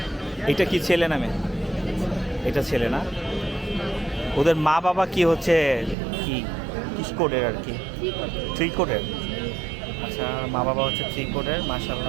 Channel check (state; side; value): drops out; left; at 6.0 s